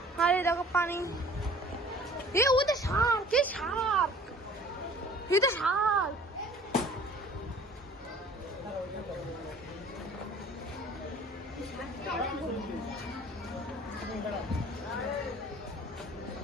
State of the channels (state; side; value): normal; both; correlation 0.49